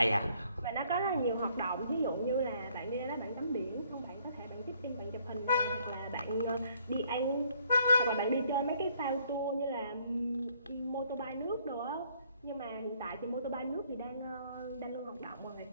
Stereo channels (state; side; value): inverted; both; correlation -0.65